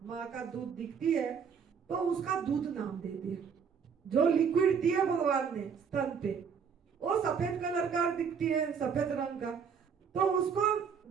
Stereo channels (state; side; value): quieter; left; 6.6 dB